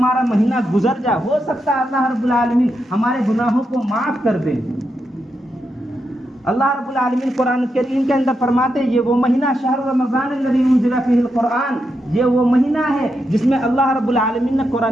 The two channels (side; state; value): both; normal; correlation 0.84